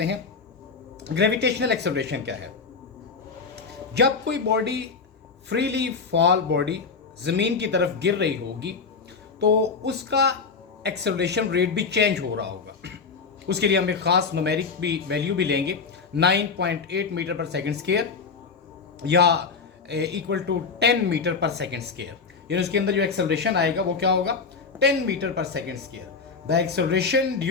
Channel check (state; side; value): quieter; right; 5.0 dB